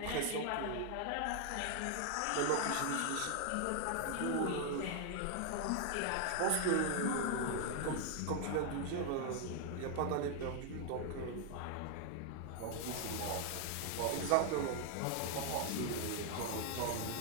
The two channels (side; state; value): both; different; correlation 0.00